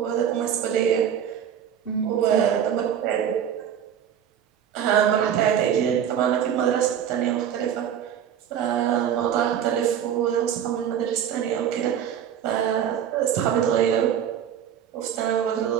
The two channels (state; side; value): quieter; left; 9.1 dB